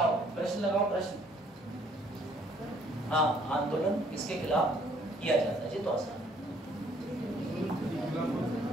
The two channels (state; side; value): normal; both; correlation 0.62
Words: प्रश्न लगाओ, प्रश्न। हाँ, आंदोलन किसके खिलाफ किया जाता है? जी तो आसान।